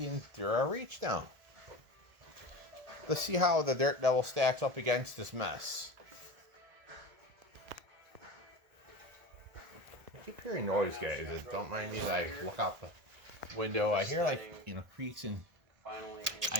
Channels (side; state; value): left; late; 1.7 ms